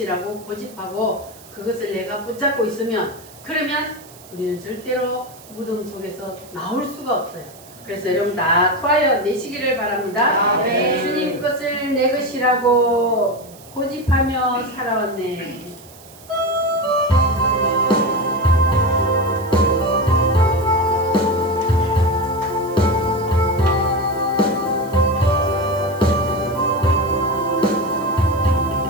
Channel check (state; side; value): noise; right; hiss, 22 dB below the sound